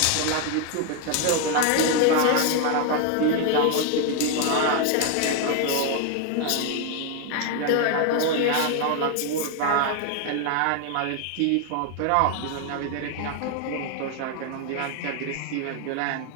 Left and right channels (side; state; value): both; different; correlation 0.01